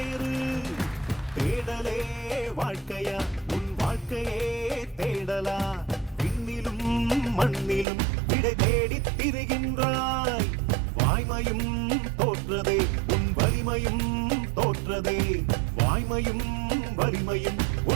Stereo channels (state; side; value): drops out; left; at 7.9 s